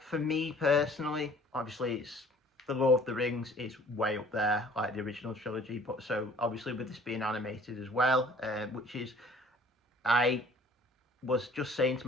for me personally, obviously it's the Lord of the Rings is way up there, like the original trilogy. But so obviously with this being animated as well, which is, I was just saying to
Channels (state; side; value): normal; both; correlation 0.53